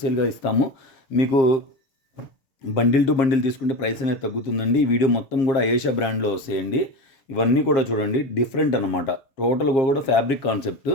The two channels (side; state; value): right; late; 7.4 ms